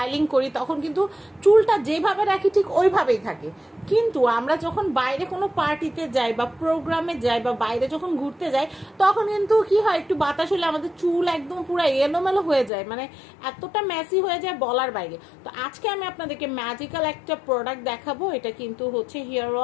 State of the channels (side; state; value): right; drops out; at 12.7 s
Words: করি তখন কিন্তু চুলটা যেভাবে রাখি ঠিক ওইভাবেই থাকে, কিন্তু আমরা যখন বাইরে কোনো পার্টিতে যাই বা প্রোগ্রামে যাই বা বাইরে যখন ঘুরতে যাই তখন কিন্তু কি হয়, একটু বাতাস হলে আমাদের চুল একদম পুরো এলোমেলো হয়ে যায়, মানে এতটা মেসি হয়ে যায় বলার বাইরে। তো আজকে আমি আপনাদেরকে ম্যাজিক্যাল একটা প্রোডাক্ট দেখাবো, এটা কিন্তু হচ্ছে হেয়ার